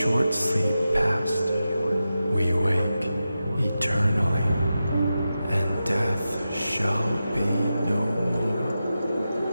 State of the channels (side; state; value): both; inverted; correlation -0.91